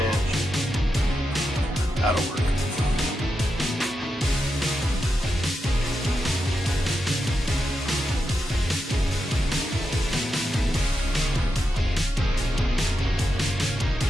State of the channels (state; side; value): normal; both; correlation 0.87